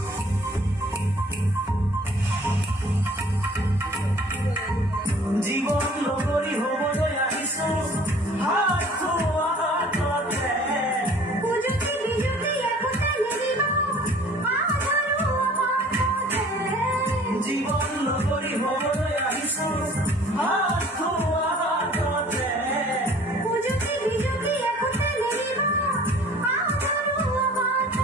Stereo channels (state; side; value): normal; both; correlation 0.51